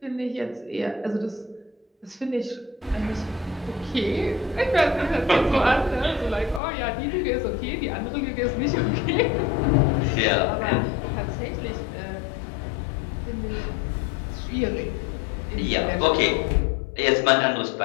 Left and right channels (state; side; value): drops out; right; at 6.6 s